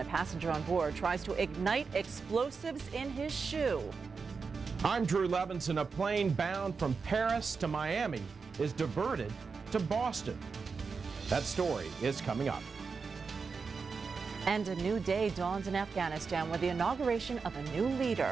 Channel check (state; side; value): quieter; left; 5.0 dB